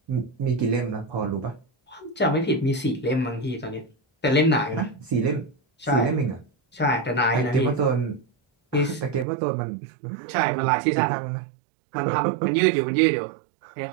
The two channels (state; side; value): drops out; left; at 9.2 s